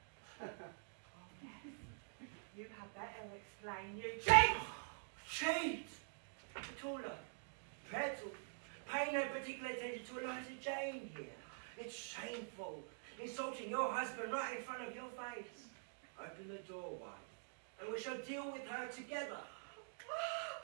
You had better explain, you cheat! Cheat! Petula, petal, Pay no particular attention to Eliza Jane here. It's shameful. Insulting your husband right in front of your face. Open the door wide, and we shall deal with her together. Oh,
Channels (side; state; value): left; silent; digital silence